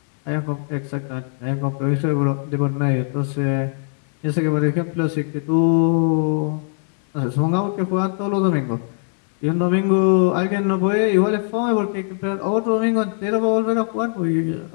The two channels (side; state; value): right; silent; digital silence